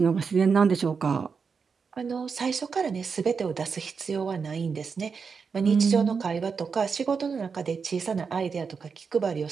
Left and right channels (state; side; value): quieter; left; 5.6 dB